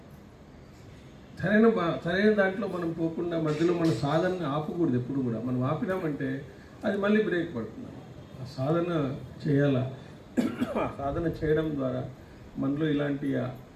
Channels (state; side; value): identical; both; correlation 1.00